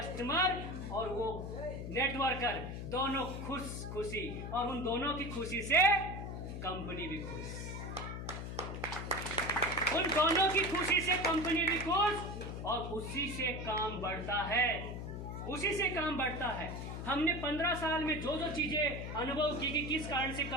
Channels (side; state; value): left; noise; hum, 6 dB below the sound